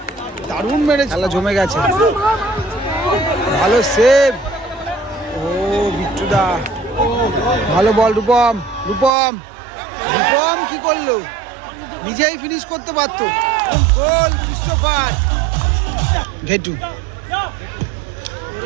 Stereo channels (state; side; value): drops out; left; at 9.1 s